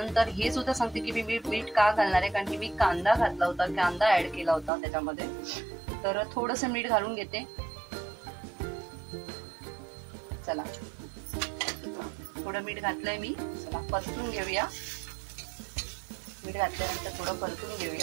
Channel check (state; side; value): drops out; left; at 4.7 s